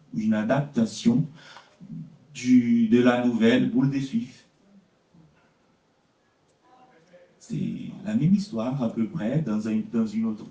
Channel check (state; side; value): identical; both; correlation 1.00